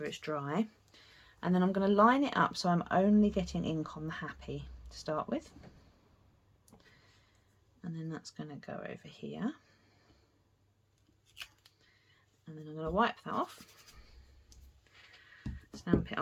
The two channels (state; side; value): identical; both; correlation 1.00